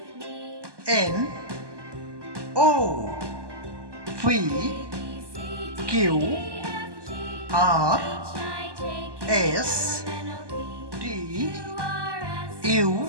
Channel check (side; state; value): left; late; 1.2 ms